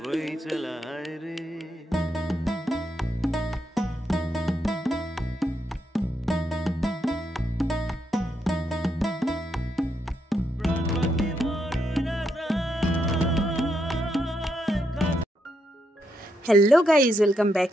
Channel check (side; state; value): both; normal; correlation 0.80